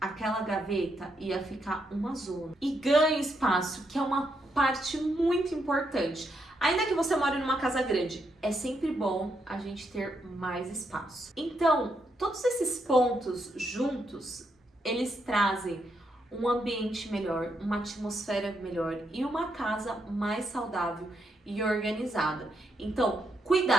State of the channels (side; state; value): both; normal; correlation 0.79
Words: aquela gaveta ia ficar uma zona. E ganha espaço, que é uma parte muito importante. Ainda que você more numa casa grande, é sempre bom a gente ter mais espaço. Então, todos esses pontos juntos, eles trazem um ambiente melhor, uma atmosfera melhor e uma casa mais saudável e organizada. Então,